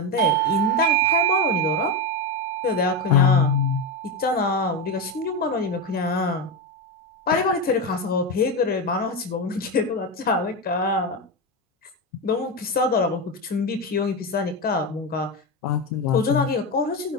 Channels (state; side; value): normal; both; correlation 0.13